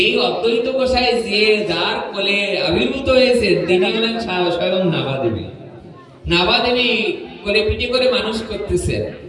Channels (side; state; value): both; identical; correlation 1.00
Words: অদ্বৈত গোসাই যে যার কোলে আবির্ভূত হয়েছে, তিনি হলেন স্বয়ং নাভাদেবী। নাভাদেবী কোলে পিঠে করে মানুষ করতেছেন।